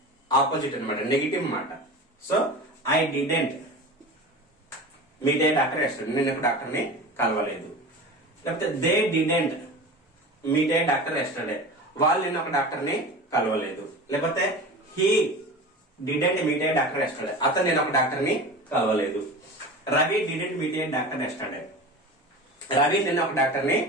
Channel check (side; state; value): both; normal; correlation 0.33